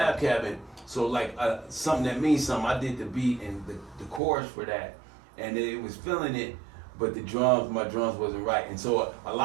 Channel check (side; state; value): left; drops out; at 4.2 s